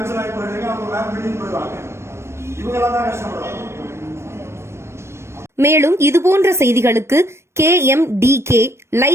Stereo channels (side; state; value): left; late; 0.13 ms